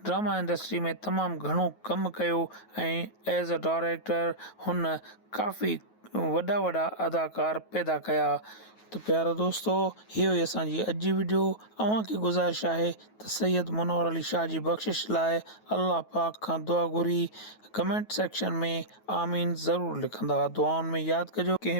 ड्रामा इंडस्ट्री में तमामु घणो कमु कयो ऐं एज़ अ डायरेक्टर हुन काफ़ी वॾा वॾा अदाकार पैदा कया। तो प्यारा दोस्तों, इहो ई असांजी अॼु जी वीडियो। अव्हांखे गुज़ारिश आहे त सैयद मुनव्वर अली शाह जी बख़्शिश लाइ अल्लाह पाक खां दुआ घुरी कमेंट सेक्शन में आमीन ज़रूरु लिखंदा। दुआउनि में यादि कजो।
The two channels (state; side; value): late; right; 9.3 ms